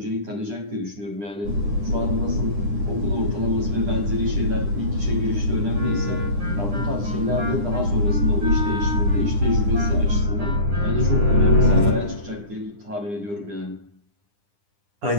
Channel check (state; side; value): late; left; 9.9 ms